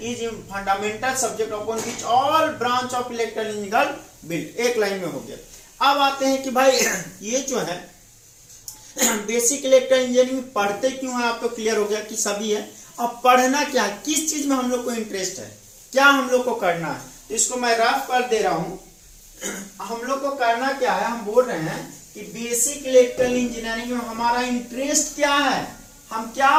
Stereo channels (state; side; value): identical; both; correlation 1.00